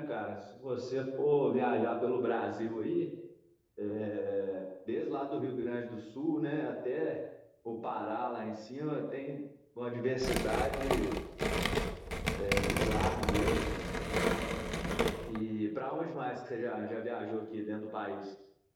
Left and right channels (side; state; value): both; identical; correlation 1.00